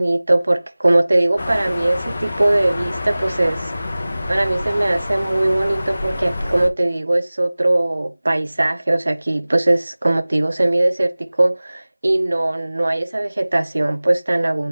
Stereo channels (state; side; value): inverted; both; correlation -0.99